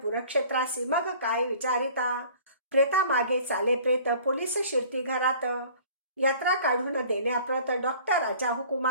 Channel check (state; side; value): inverted; both; correlation -0.49